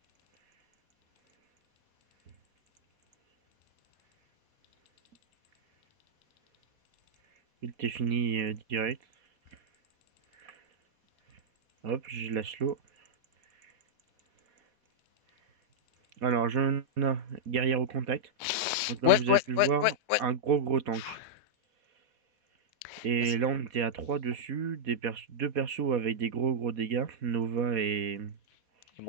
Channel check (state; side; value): late; left; 4.2 ms